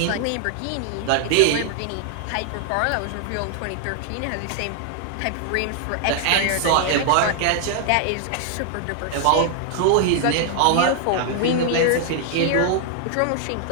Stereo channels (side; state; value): both; different; correlation 0.00